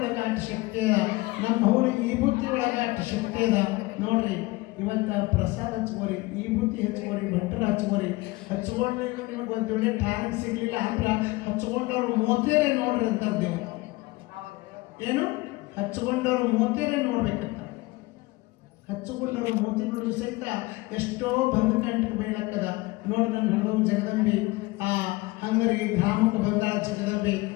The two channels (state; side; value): quieter; right; 21.7 dB